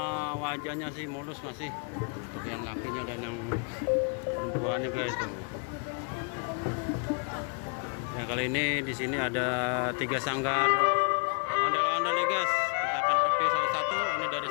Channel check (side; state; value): right; quieter; 38.1 dB